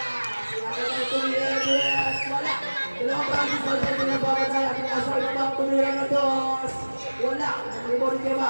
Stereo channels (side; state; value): both; inverted; correlation -1.00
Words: siya natin tumira na dos. Wala. Dalawang practice pa siya pinapapatay. Pinasok na Maki, tumira na dos. Wala. Nag-rebound kay